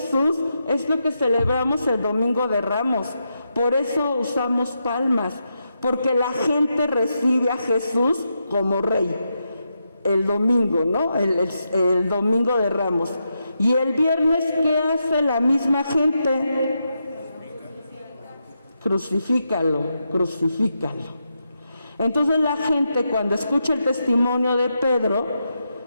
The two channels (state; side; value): inverted; both; correlation -0.85